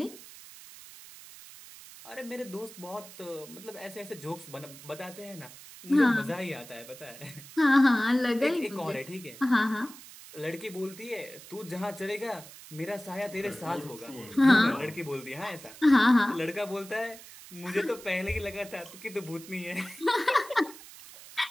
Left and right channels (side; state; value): right; noise; hiss, 17 dB below the sound